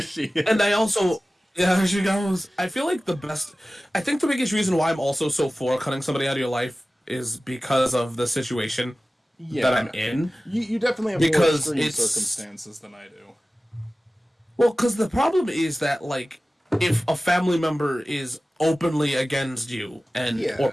is. And I also, yeah, there she goes. I feel like I think the biggest reason why I'm also so for cutting somebody out of your life is because of the situation that I'm in. You definitely have more extreme circumstances than I do. Well, because the problem is that, like, if a family member is openly against you, or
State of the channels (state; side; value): normal; both; correlation 0.96